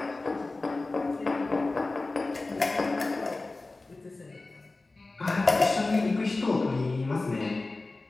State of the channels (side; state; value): right; quieter; 3.3 dB